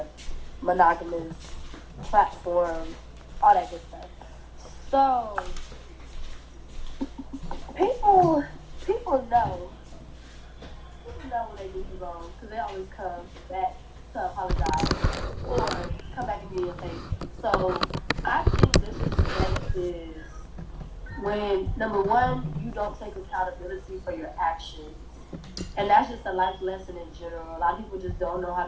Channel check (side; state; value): both; identical; correlation 1.00